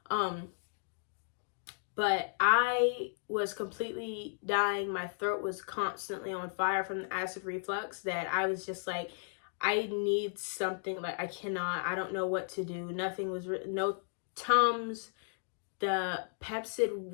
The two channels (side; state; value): right; silent; digital silence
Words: But I was completely dying. My throat was constantly on fire from the acid reflux that I was just like, I need something. Like, I don't know what to do. Nothing was, no Tums. The Pepsid